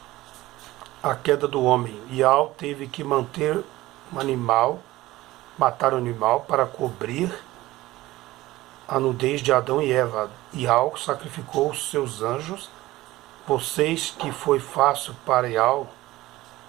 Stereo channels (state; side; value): quieter; left; 17.5 dB